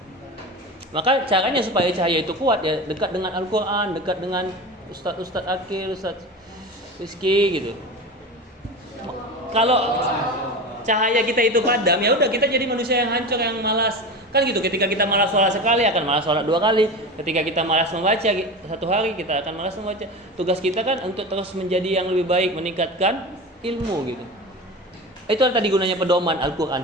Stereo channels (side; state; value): both; normal; correlation 0.28